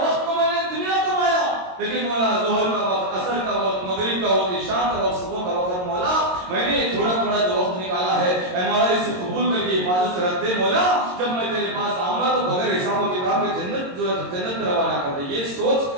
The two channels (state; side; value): late; left; 22 ms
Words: کو میں نے دنیا کمایا، لیکن مولا ظہر کا وقت، عصر کا وقت، مغرب کا وقت، عشاء کا وقت، صبح کا وقت، مولا میں نے تھوڑا تھوڑا جو وقت نکالا ہے، اے مولا اسے قبول کر کے حفاظت سے رکھ دے. مولا جب میں تیرے پاس آؤں گا تو بغیر حساب و کتاب کے جنت جو ہے جنت میں روانہ کر دے. یہ